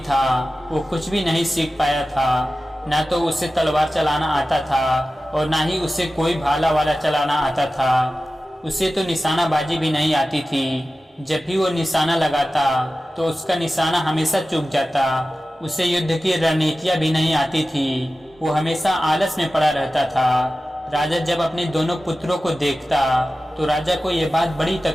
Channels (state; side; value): normal; both; correlation 0.95